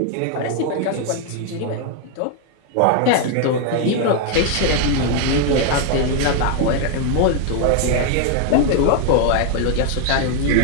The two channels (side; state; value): both; different; correlation 0.00